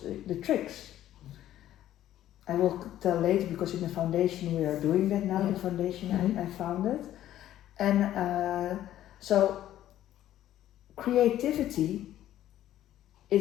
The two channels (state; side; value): quieter; right; 12.7 dB